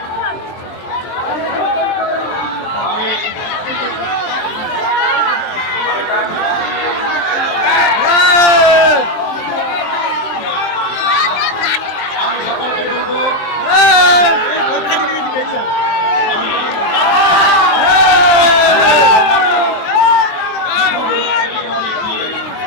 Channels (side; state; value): right; late; 23 ms